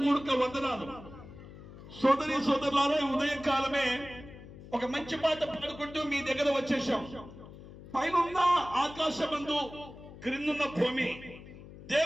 వందనాలు. సోదరి సోదరులారా, ఉదయకాలమే ఒక మంచి పాట పాడుకుంటూ మీ దగ్గర వచ్చేసాం. పైనున్న ఆకాశమందు క్రిందున్న భూమి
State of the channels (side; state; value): left; noise; hum, 16 dB below the sound